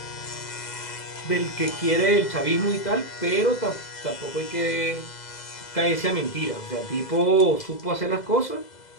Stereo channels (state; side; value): late; right; 2.0 ms